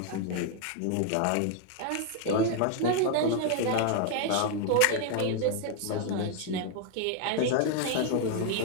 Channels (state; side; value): different; both; correlation 0.00